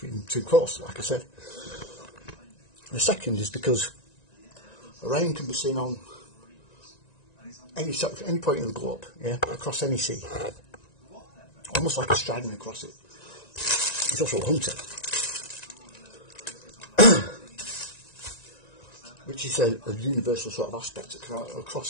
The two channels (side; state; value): right; late; 1.9 ms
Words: two coasts, like I said. The second is because Orion can be seen on any point in the globe, across any sea, almost like a striding across it. He's also a hunter, which is a universal sort of aspect